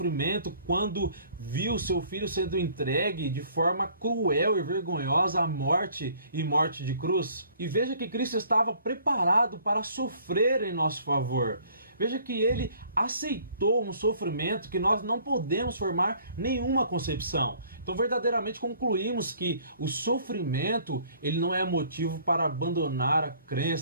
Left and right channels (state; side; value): inverted; both; correlation -0.57